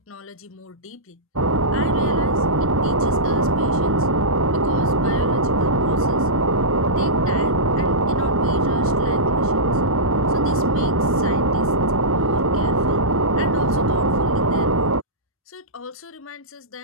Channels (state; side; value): normal; both; correlation -0.14